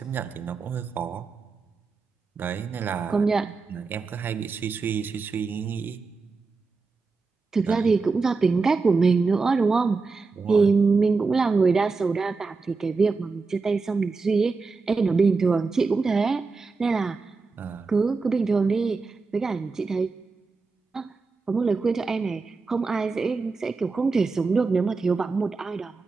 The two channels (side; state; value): left; quieter; 4.3 dB